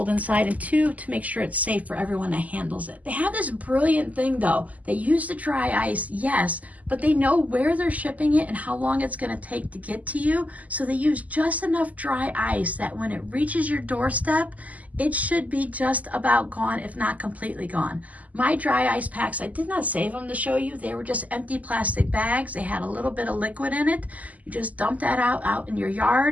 inside, and 2, to make sure it's safe for everyone that handles it. They have this brilliant thing though. They use the dry ice, yes, but they know where they're shipping it and how long it's gonna take to get to you. So they use just enough dry ice that when it reaches your doorstep, it should be just about gone, if not completely gone. My dry ice packs, I did not save them to show you. They were just empty plastic bags. They had a little bit of liquid in it. You just dump that out in your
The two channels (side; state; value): left; late; 0.075 ms